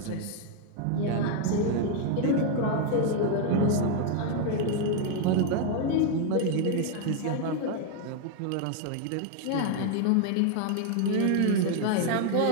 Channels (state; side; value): different; both; correlation 0.00